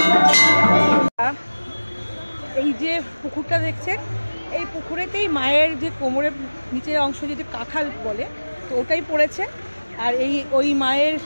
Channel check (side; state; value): both; inverted; correlation -1.00